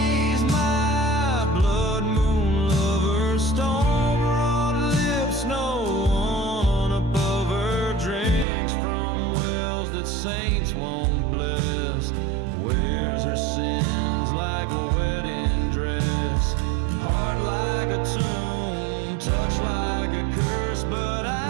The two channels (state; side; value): drops out; left; at 8.5 s